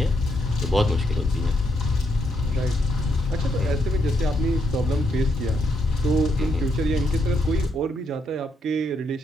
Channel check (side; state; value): both; normal; correlation 0.77